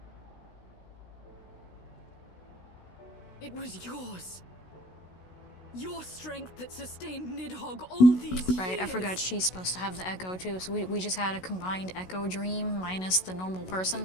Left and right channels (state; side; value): late; right; 16 ms